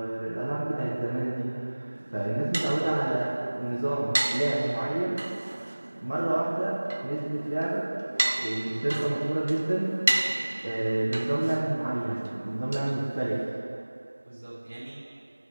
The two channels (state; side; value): inverted; both; correlation -1.00